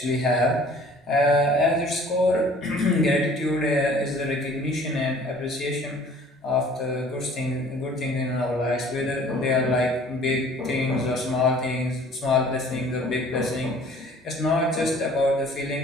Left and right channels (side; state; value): both; normal; correlation 0.51